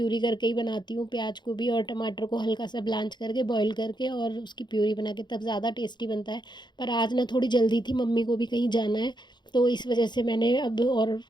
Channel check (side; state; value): right; late; 0.21 ms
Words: करके ही बनाती हूँ, प्याज को भी और टमाटर को हल्का सा ब्लांच करके बॉईल करके और उसकी प्यूरी बना के, तब ज़्यादा टेस्टी बनता है। पर आज ना थोड़ी जल्दी थी, मम्मी को भी कहीं जाना है, तो इस वजह से मैंने अब, और